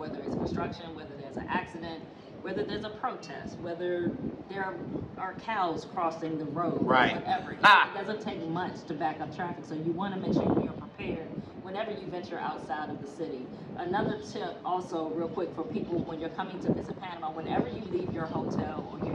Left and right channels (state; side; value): identical; both; correlation 1.00